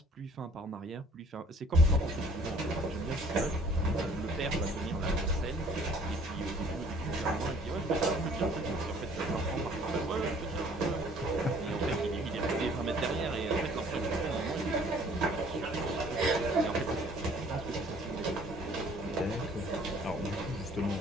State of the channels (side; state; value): both; normal; correlation 0.56